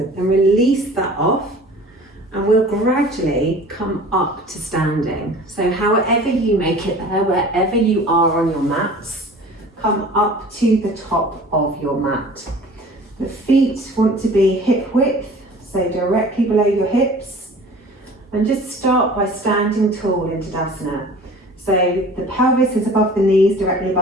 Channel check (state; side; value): normal; both; correlation 0.44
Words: And release that off and we'll gradually come up to standing. So however you make it there, wherever you are on your mats, come up to the top of your mat. The feet want to be hip width, so directly below your hips. And just start by standing tall in Tadasana. So the pelvis is above the knees, directly